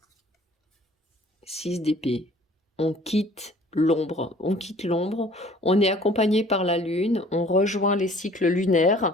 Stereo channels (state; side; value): normal; both; correlation 0.52